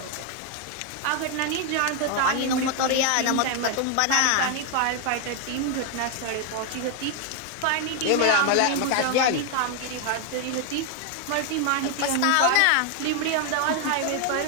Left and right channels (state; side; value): different; both; correlation 0.00